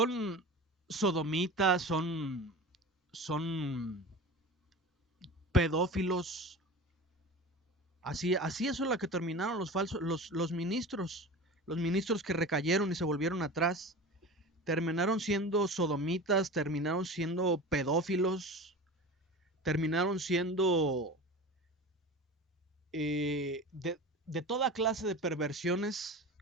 sodomitas, son pedófilos. Así es la que terminaron los ministros que recayeron y se volvieron atrás. Terminaron siendo sodomitas, terminaron siendo pedófilos, terminaron siendo de toda clase de perversiones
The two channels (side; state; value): both; normal; correlation 0.33